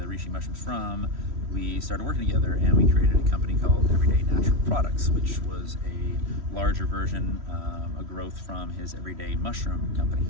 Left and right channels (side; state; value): left; late; 3.1 ms